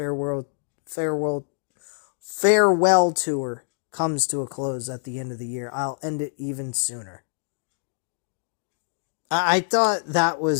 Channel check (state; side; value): silent; right; 62 dB below the other